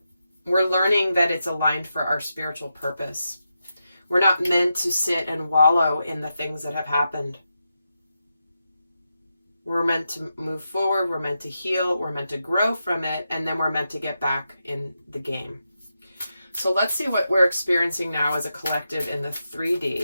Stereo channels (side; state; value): both; inverted; correlation -0.87